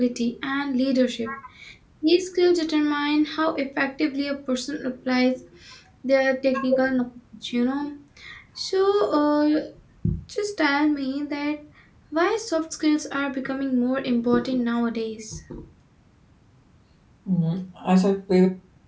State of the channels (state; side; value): identical; both; correlation 1.00